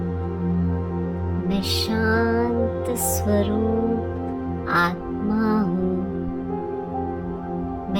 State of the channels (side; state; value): both; identical; correlation 1.00